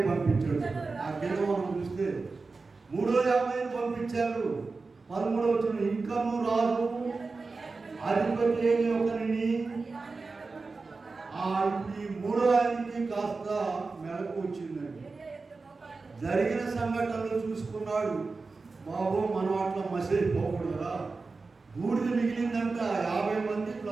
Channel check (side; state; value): left; quieter; 4.0 dB